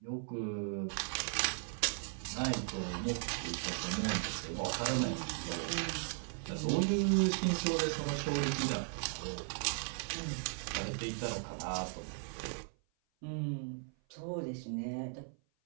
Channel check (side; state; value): left; silent; 53 dB below the other